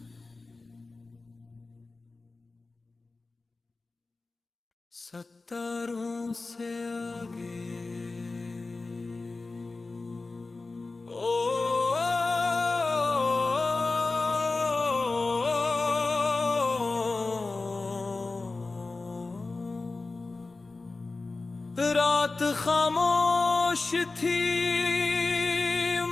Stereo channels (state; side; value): quieter; right; 3.6 dB